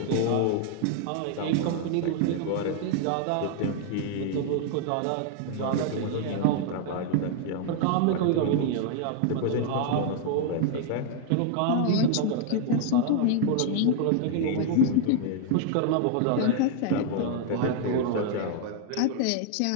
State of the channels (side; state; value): both; different; correlation 0.00